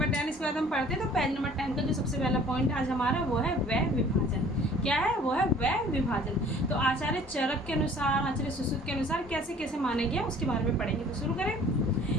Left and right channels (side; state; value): both; normal; correlation 0.51